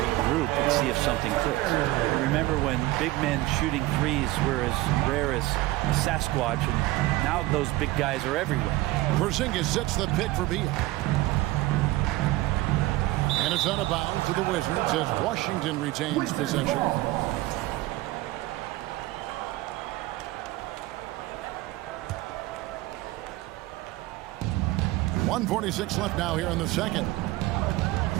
and see if something clicks. Remember when big men shooting threes were as rare as a Sasquatch, and now those big guys are everywhere. Porzingis sets the pick for Beal. And it's out of bounds to the Wizards as Washington retains possession. .146 left now here in the second.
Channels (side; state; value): left; quieter; 18.3 dB